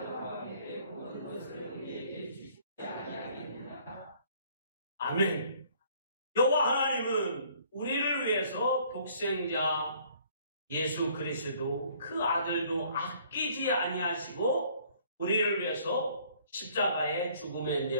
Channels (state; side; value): inverted; both; correlation -0.58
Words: 함께 모든 것을 우리에게 주시지 아니하겠느냐. 아멘. 여호와 하나님은 우리를 위해서 독생자 예수 그리스도 그 아들도 아끼지 아니하시고 우리를 위해서 십자가의 죽음에